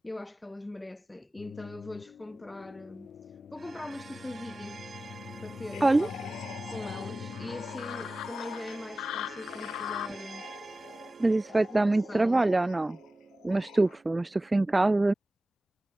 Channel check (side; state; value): both; normal; correlation 0.96